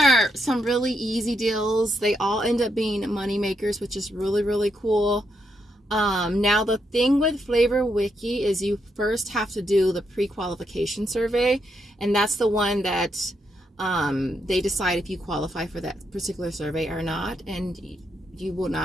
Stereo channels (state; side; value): normal; both; correlation 0.80